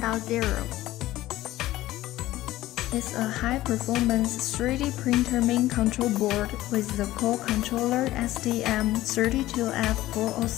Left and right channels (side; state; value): right; quieter; 15.9 dB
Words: It's a high-performance 3D printer main control board with the core controller